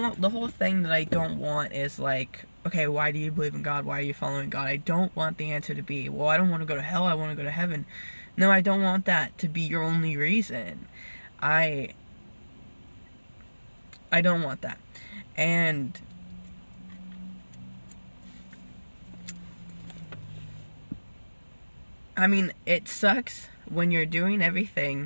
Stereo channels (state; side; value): inverted; both; correlation -1.00